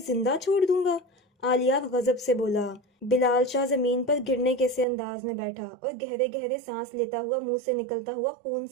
छोड़ दूंगा। आलियार गजब से बोला। बिलाल शाह जमीन पर गिरने के से अंदाज में बैठा और गहरे गहरे सांस लेता हुआ मुंह से निकलता हुआ खून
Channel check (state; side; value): drops out; left; at 4.9 s